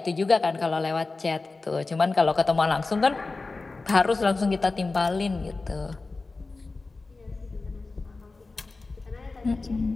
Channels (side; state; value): right; quieter; 3.7 dB